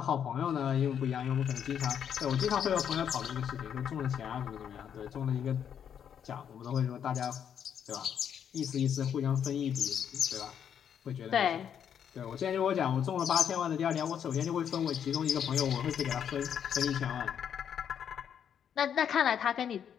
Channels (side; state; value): right; quieter; 8.5 dB